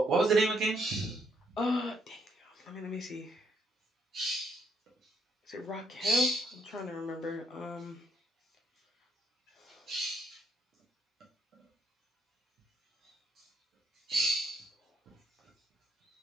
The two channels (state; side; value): normal; both; correlation 0.73